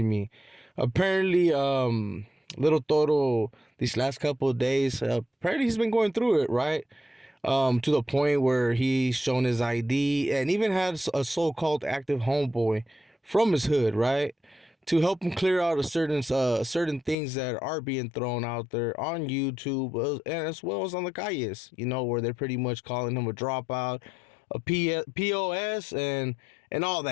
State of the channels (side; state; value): right; drops out; at 17.2 s